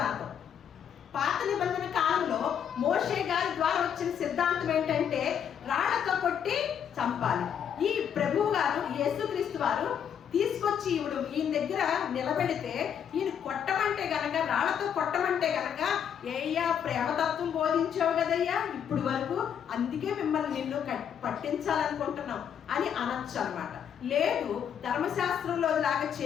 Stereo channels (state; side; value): quieter; right; 8.4 dB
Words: పాత నిబంధన కాలంలో మోషే గారి ద్వారా వచ్చిన సిద్ధాంతం ఏంటంటే రాళ్లతో కొట్టి చంపాలి. ఈ ప్రభువు గారు యేసుక్రీస్తు వారు తీసుకొచ్చి ఈయన దగ్గర నిలబెడితే ఈయన కొట్టమంటే గనక, రాళ్లతో కొట్టమంటే గనక, ఏయ్యా ప్రేమతత్వం బోధించావు కదయ్యా ఇప్పుడు వరకు, అందుకే మిమ్మల్ని నిన్ను పట్టించాలనుకుంటున్నాం అని అనొచ్చు అనమాట. లేదు, ధర్మశాస్త్రంలో లాగా